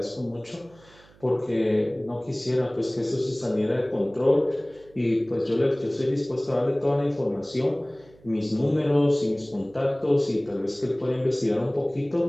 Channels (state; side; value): noise; right; hum, 27 dB below the sound